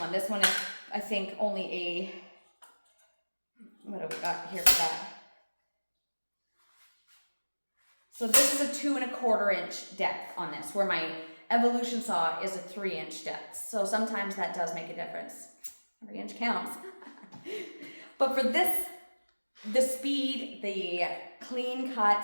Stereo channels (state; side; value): inverted; both; correlation -1.00